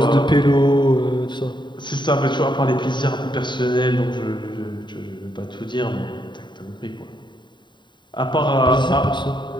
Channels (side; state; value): right; late; 0.22 ms